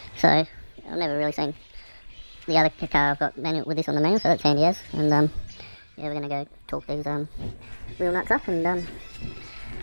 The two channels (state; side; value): inverted; both; correlation -1.00